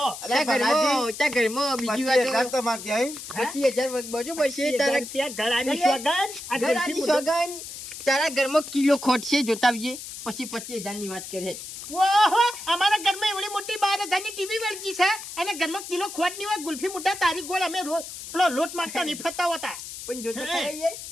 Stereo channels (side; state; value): left; noise; hiss, 10 dB below the sound